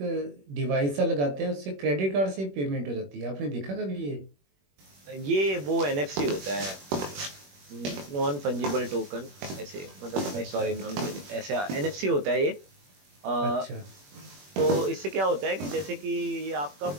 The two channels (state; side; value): late; left; 21 ms